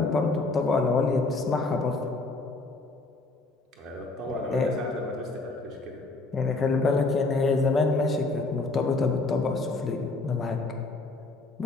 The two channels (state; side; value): quieter; right; 3.4 dB